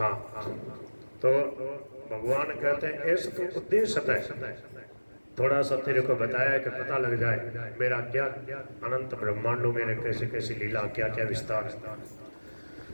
हाँ। तो भगवान कहते हैं ऐसा तो उद्देश्य है, थोड़ा सा तेरे को बताया कि पता लग जाए मेरा क्या अनंत ब्रह्मांडों में कैसे कैसे लीला, क्या क्या विस्तार।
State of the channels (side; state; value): both; inverted; correlation -1.00